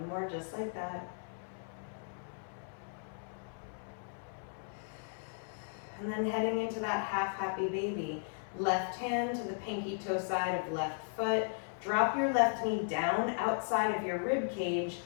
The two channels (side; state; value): right; silent; 54 dB below the other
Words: more just like that. And then heading into that half happy baby. Left hand to the pinky toe side of left foot. Drop your left knee down outside of your rib cage,